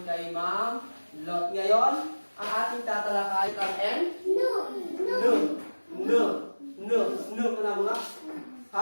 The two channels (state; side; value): inverted; both; correlation -1.00